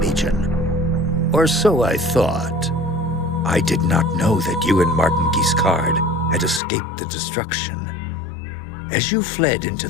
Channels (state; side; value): drops out; right; at 6.6 s